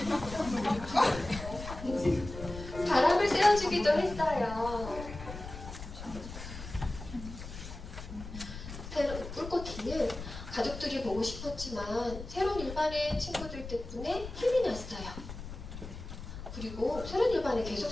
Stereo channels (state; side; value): noise; left; rumble, 10 dB below the sound